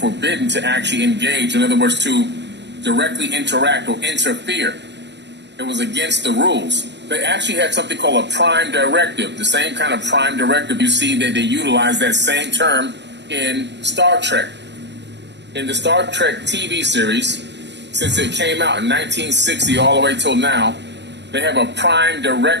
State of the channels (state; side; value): late; left; 0.51 ms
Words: to actually engage. In other words, to directly interact or interfere. It was against the rules. They actually had something called a prime directive, the same kind of prime directive you see that they utilize that same term in Star Trek. In the Star Trek TV series, since it came out in 1960 all the way till now, they have a prime